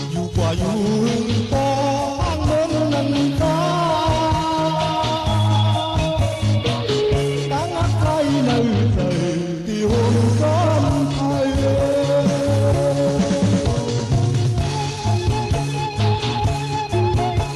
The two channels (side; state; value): both; identical; correlation 1.00